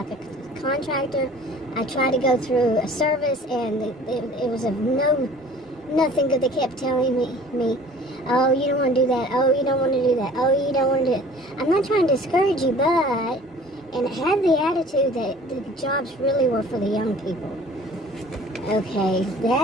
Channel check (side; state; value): both; normal; correlation 0.48